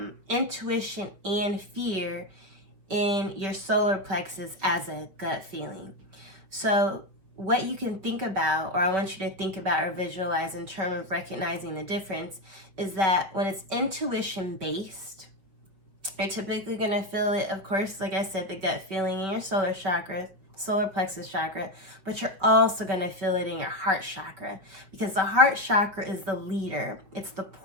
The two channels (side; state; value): left; late; 5.3 ms